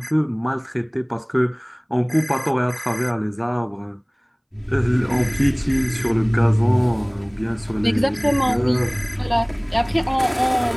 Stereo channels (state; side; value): identical; both; correlation 1.00